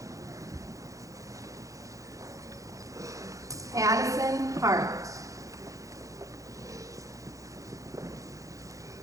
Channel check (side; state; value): left; late; 0.16 ms